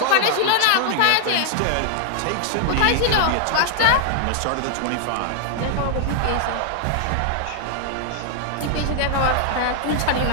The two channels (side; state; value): both; different; correlation 0.00